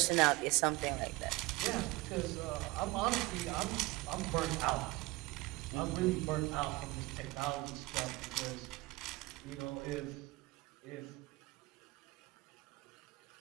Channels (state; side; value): quieter; left; 21.2 dB